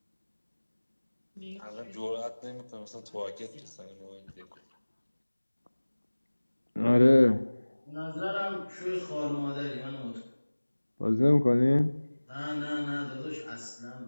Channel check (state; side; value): inverted; both; correlation -1.00